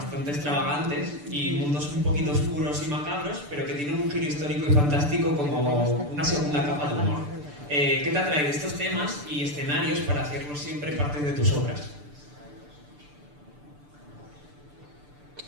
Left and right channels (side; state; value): left; late; 6.8 ms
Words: extravagantes y mundos un poquito oscuros y macabros, pero que tienen un giro histórico y fantástico como una segunda capa de humor. ¿Qué te atrae de estos temas y escenarios para hacerlos siempre parte de tus obras?